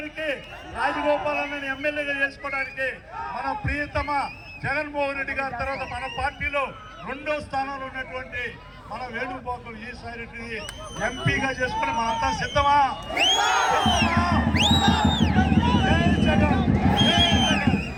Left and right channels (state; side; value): identical; both; correlation 1.00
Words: రాజగోపాల్ అన్నని ఎమ్మెల్యేగా చేసుకోవడానికి మన ప్రియతమ జగన్మోహన్ రెడ్డి గారి తర్వాత మన పార్టీలో 2వ స్థానంలో ఉన్నటువంటి మన వేణుగోపాల్ విజయసాయి రెడ్డిని ఎంపీగా చేసుకుని మనంతా సిద్ధమా?